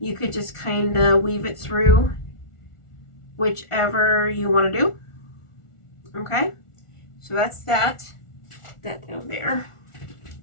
you could just kind of weave it through whichever you want to do. Okay, so that's that down there.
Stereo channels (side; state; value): right; late; 1.4 ms